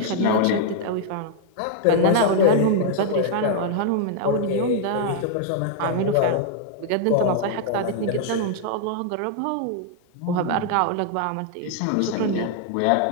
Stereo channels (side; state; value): both; different; correlation -0.01